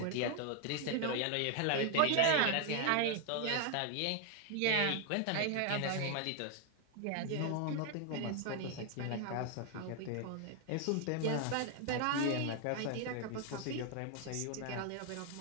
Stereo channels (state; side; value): different; both; correlation 0.00